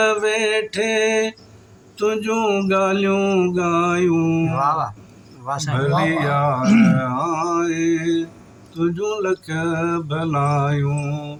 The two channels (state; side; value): identical; both; correlation 1.00